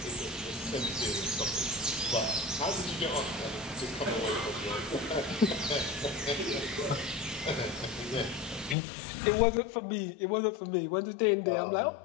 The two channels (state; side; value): drops out; right; at 8.8 s